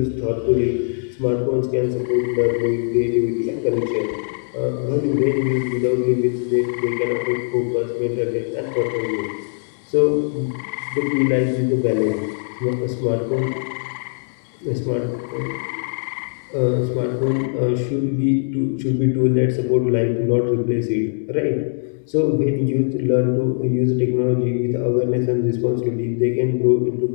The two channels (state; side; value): silent; right; digital silence